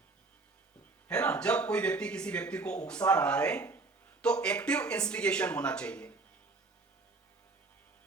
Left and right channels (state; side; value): quieter; left; 3.7 dB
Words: है ना। जब कोई व्यक्ति किसी व्यक्ति को उकसा रहा है तो एक्टिव इंस्टिगेशन होना चाहिए।